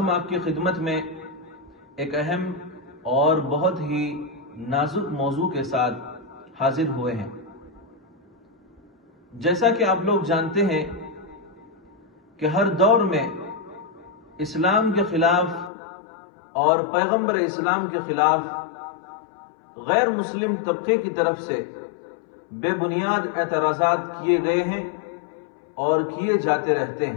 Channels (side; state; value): right; drops out; at 15.7 s